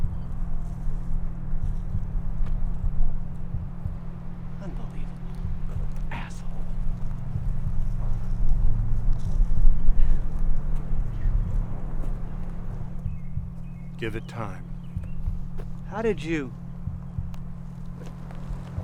Unbelievable. Asshole. Give it time. How did you...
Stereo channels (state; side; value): identical; both; correlation 1.00